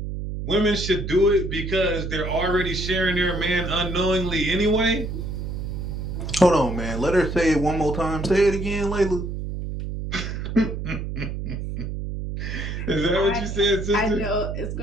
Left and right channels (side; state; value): right; noise; hum, 5 dB below the sound